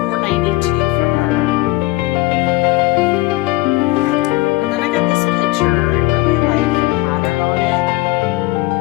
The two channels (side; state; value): right; quieter; 19.8 dB